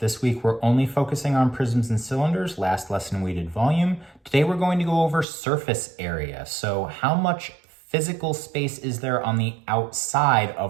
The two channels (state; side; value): drops out; left; at 5.2 s